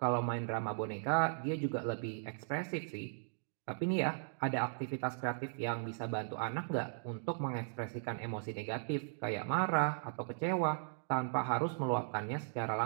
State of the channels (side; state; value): left; silent; digital silence